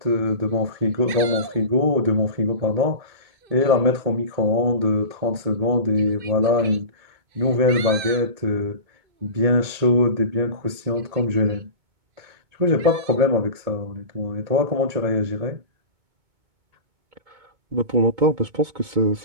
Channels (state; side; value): late; left; 2.2 ms